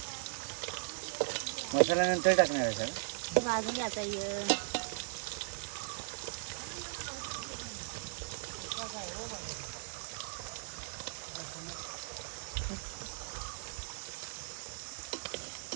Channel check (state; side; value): silent; left; digital silence